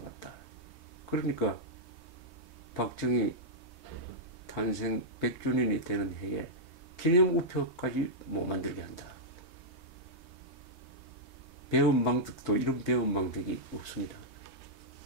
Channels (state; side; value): late; right; 3.2 ms